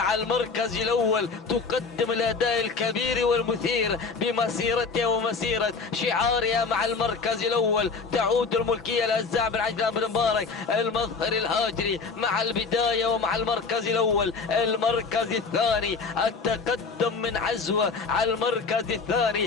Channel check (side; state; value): right; quieter; 4.7 dB